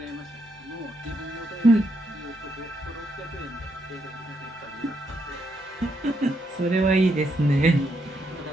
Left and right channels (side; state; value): both; normal; correlation 0.78